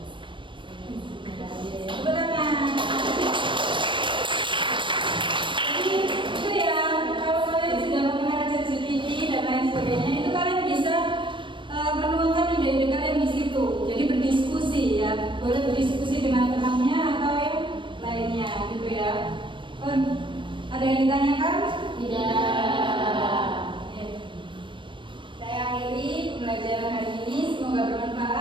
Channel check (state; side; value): late; left; 0.24 ms